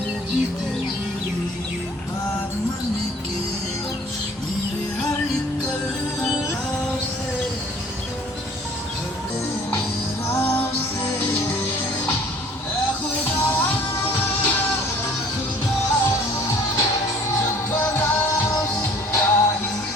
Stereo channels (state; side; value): normal; both; correlation 0.52